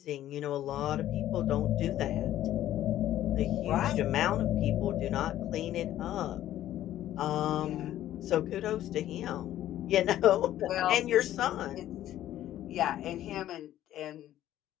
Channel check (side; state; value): right; quieter; 12.9 dB